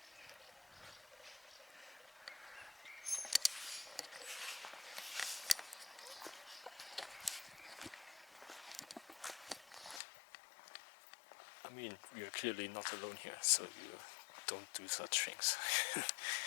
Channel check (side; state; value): right; drops out; at 10.0 s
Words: I mean, we are clearly not alone here, so you don't do such things.